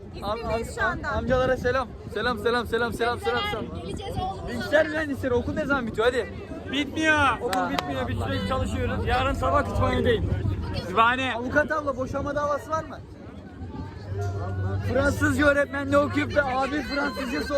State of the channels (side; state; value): both; identical; correlation 1.00